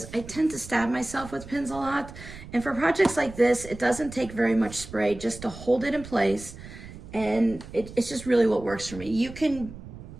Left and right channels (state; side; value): noise; right; rumble, 15 dB below the sound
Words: I tend to stab myself with pins a lot. And for projects like this, it doesn't take very much spray just to hold it in place. And it's just really what works for me. You can